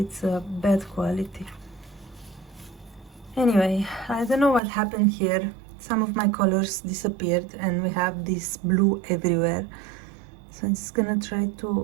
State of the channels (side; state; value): left; drops out; at 4.6 s